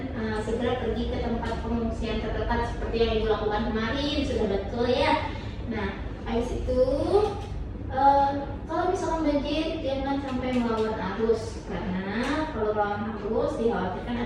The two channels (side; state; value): both; identical; correlation 1.00